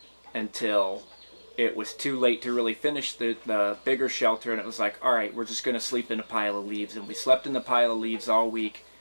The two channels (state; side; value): inverted; both; correlation -1.00